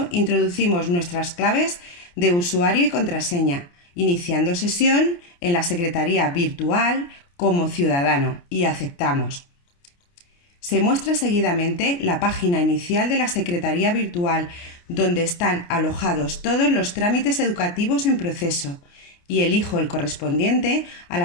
introducimos nuestras claves de usuario y contraseña, iniciando sesión en la secretaría virtual como ciudadano y aceptamos. Se muestra seguidamente la página inicial de la Secretaría Virtual, donde están alojados todos los trámites educativos en proceso, y elijo el correspondiente a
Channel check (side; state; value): right; late; 29 ms